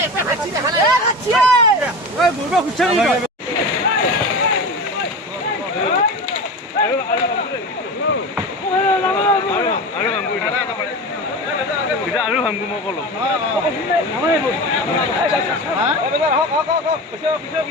আৰু ভামগো মই কলো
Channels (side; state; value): both; normal; correlation 0.28